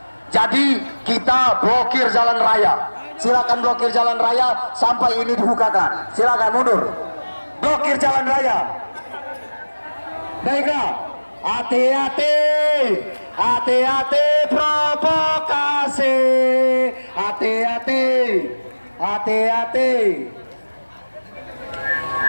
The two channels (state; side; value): inverted; both; correlation -1.00